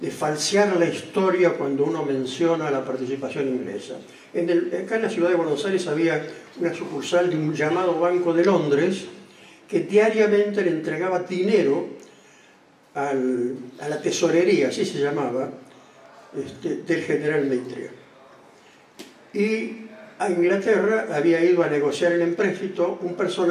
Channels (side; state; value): both; identical; correlation 1.00